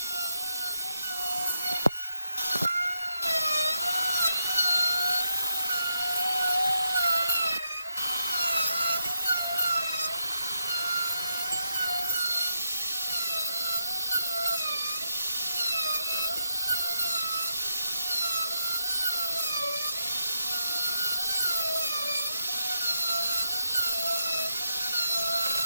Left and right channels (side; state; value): both; inverted; correlation -0.81